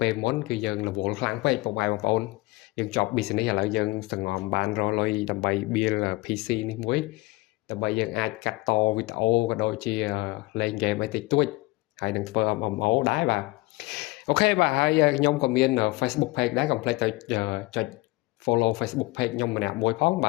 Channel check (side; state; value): right; quieter; 21.8 dB